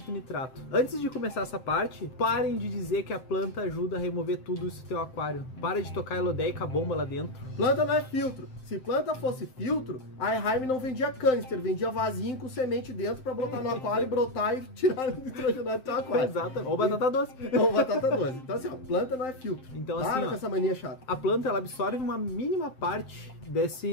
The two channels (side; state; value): right; late; 7.7 ms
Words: e nitrato. Antes de começar essa parte, parem de dizer que a planta ajuda a remover tudo isso do teu aquário. Para de tocar elodeica bomba lá dentro. Planta não é filtro. Se planta fosse filtro, a Eheim não vendia canister, vendia vasinho com semente dentro para botar no aquário e brotar e tirar o nitrogenado do teu aquário. Exato. Ou batata doce. Ou batata doce. Então assim, planta não é filtro. Então para assim, com essa mania chata. A planta ela absorve uma mínima parte